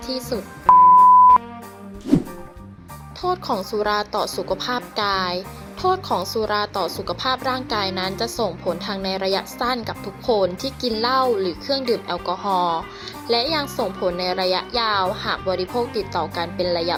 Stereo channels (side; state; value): both; identical; correlation 1.00